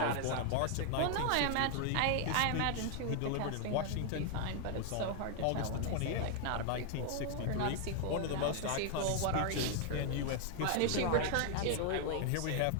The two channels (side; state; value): both; different; correlation 0.00